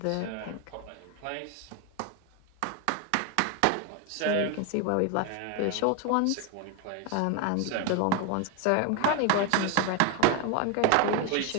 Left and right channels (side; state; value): both; different; correlation 0.01